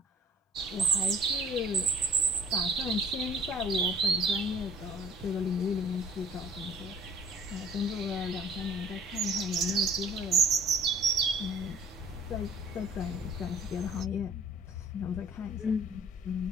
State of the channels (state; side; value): normal; both; correlation 0.52